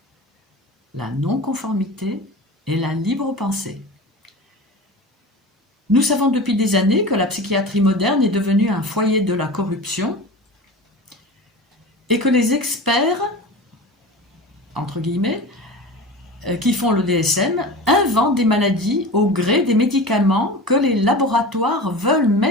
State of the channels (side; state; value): both; normal; correlation 0.33